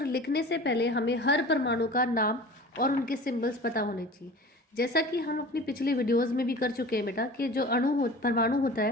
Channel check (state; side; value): normal; both; correlation 0.39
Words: लिखने से पहले हमें हर परमाणु का नाम और उनके सिंबल्स पता होने चाहिए। जैसा कि हम अपनी पिछली वीडियोस में भी कर चुके हैं बेटा कि जो परमाणु होता